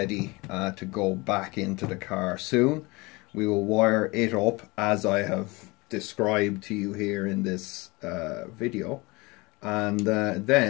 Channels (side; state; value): right; quieter; 24.5 dB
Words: to go back into the car soon. We will wire it up as I have described to you here in this video, and